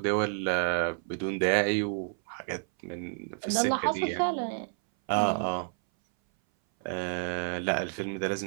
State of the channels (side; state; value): left; silent; 58 dB below the other